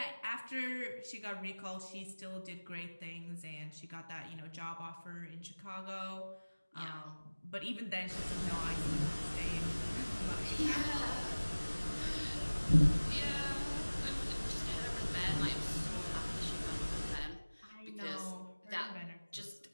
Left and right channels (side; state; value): both; inverted; correlation -1.00